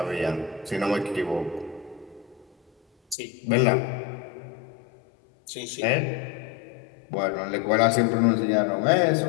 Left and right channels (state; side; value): drops out; right; at 3.2 s